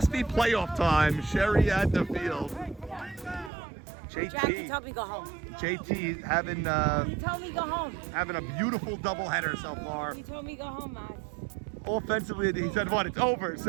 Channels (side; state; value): left; drops out; at 3.5 s